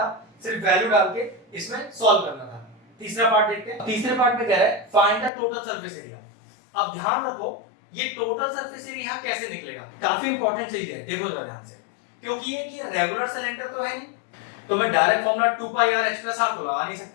सिर्फ वैल्यू डाल के इसमें सॉल्व करना था। तीसरा पार्ट देखते हैं। तीसरे पार्ट में कह रहा है find the total surface area. अब ध्यान रखो ये टोटल सरफेस एरिया कैसे निकलेगा, काफी इंपॉर्टेंट चीज है, देखो जरा ध्यान से, क्योंकि ये कि रेगुलर सिलेंडर तो है नहीं, तो मैं direct formula 2 pi r h plus r को लगा नहीं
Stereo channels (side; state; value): right; drops out; at 5.3 s